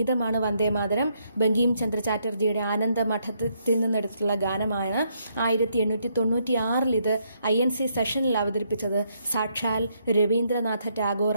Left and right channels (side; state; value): both; inverted; correlation -0.74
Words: വന്ദേ മാതരം. ബങ്കിം ചന്ദ്ര ചാറ്റർജിയുടെ ആനന്ദ മഠത്തിൽ നിന്നെടുത്തിട്ടുള്ള ഗാനമാണ്. 1896 ഇത് INC സെഷനിൽ അവതരിപ്പിച്ചത് സാക്ഷാൽ രവീന്ദ്രനാഥ